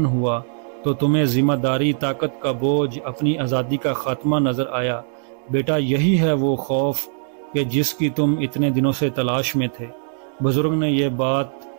ہوا تو تمہیں ذمہ داری، طاقت کا بوجھ، اپنی آزادی کا خاتمہ نظر آیا۔ بیٹا، یہی ہے وہ خوف کہ جس کی تم اتنے دنوں سے تلاش میں تھے۔ بزرگ نے یہ بات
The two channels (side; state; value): left; silent; digital silence